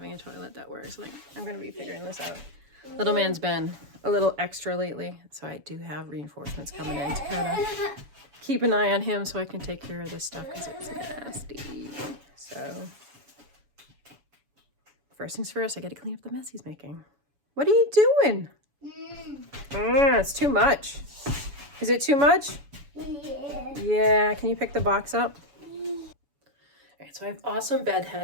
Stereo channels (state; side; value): late; left; 7.0 ms